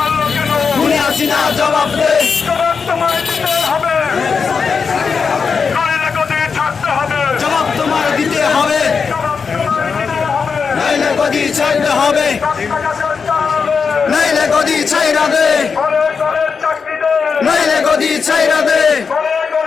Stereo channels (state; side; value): quieter; right; 5.6 dB